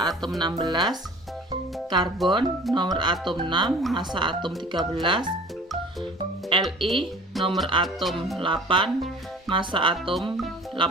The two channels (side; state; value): both; normal; correlation 0.45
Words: atom 16, karbon nomor atom 6, massa atom 13, Li nomor atom 8, massa atom